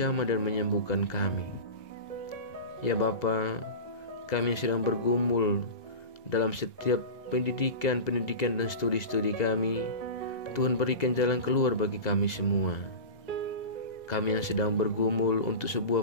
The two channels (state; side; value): late; right; 1.9 ms